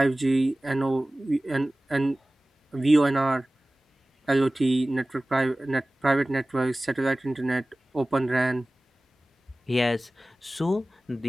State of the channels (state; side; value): normal; both; correlation 0.97